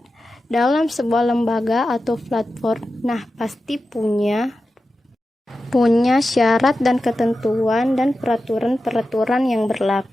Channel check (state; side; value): normal; both; correlation 0.92